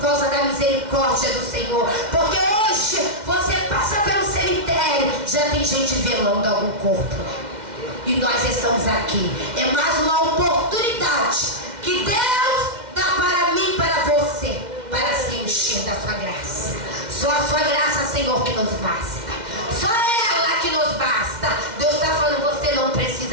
da misericórdia do Senhor. Porque hoje você passa pelo cemitério, já tem gente velando algum corpo, e nós estamos aqui. É mais uma oportunidade que Deus dá para mim e para você, para se encher da sua graça. Só a sua graça, Senhor, que nos basta. Só ela que nos basta. Deus está falando: você não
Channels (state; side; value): late; left; 2.1 ms